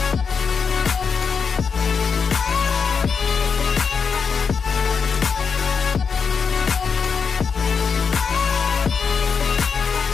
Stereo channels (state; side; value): quieter; right; 5.9 dB